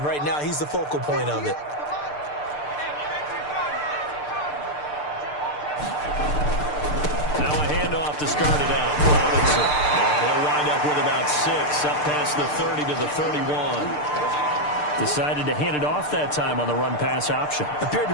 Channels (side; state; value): right; late; 6.7 ms